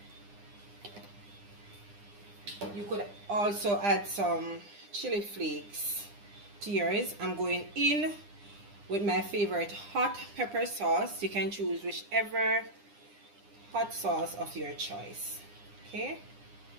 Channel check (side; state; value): left; late; 9.9 ms